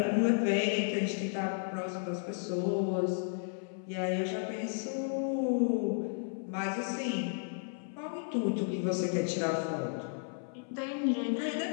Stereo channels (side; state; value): right; silent; 56 dB below the other